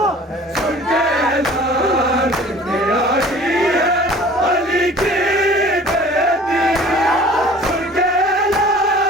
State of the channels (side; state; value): both; normal; correlation 0.47